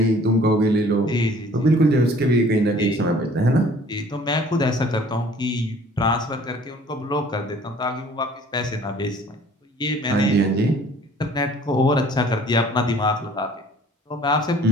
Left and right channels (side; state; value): both; normal; correlation 0.53